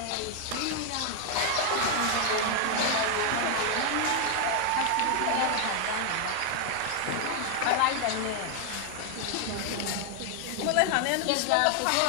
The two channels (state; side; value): different; both; correlation 0.00